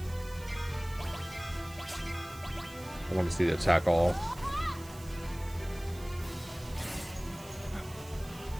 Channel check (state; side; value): noise; right; hiss, 18 dB below the sound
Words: want to see the attack all.